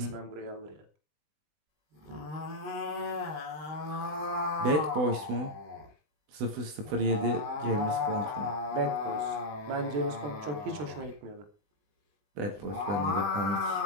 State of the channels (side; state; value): left; late; 20 ms